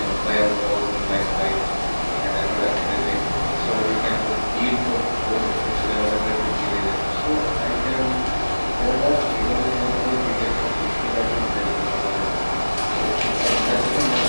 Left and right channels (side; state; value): both; inverted; correlation -1.00